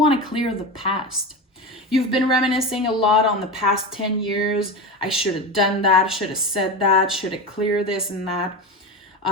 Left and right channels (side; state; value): both; normal; correlation 0.22